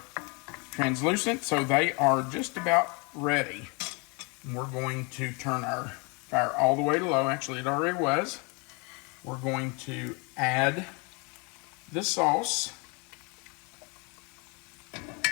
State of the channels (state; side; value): quieter; right; 30.8 dB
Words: translucent, so they are just about ready. And we're going to turn our fire all the way to low. Actually, it already was. We're going to add the sauce.